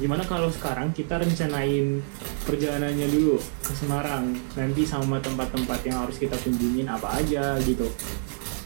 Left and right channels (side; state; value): left; silent; 59 dB below the other